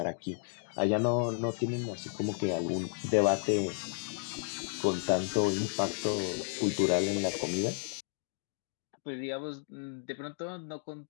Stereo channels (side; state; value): right; silent; digital silence